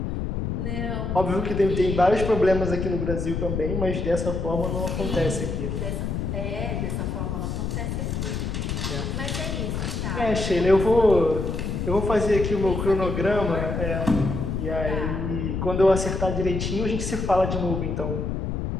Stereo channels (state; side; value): noise; left; rumble, 2 dB below the sound